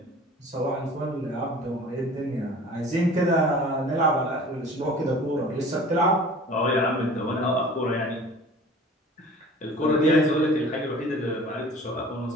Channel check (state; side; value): normal; both; correlation 0.44